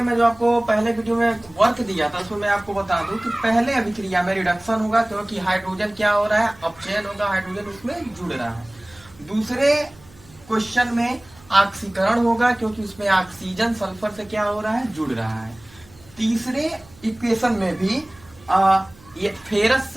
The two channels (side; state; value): right; noise; hum, 25 dB below the sound